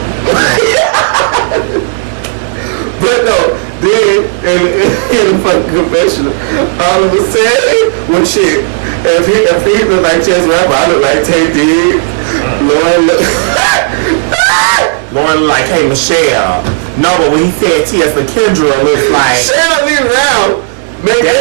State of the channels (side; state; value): left; silent; digital silence